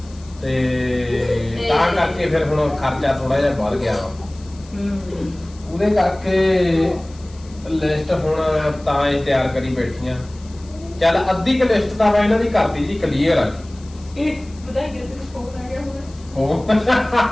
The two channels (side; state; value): left; noise; hiss, 25 dB below the sound